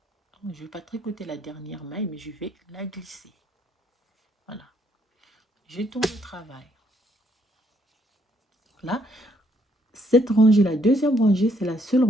Je ne vais pas tricoter la dernière maille, mais je vais la glisser. Voilà. Je tourne le travail. Là, cette rangée, la deuxième rangée, c'est la seule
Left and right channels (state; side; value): normal; both; correlation 0.70